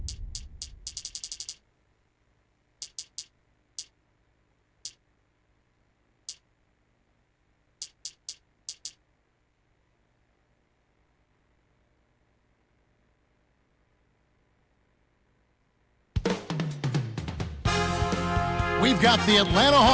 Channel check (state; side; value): identical; both; correlation 1.00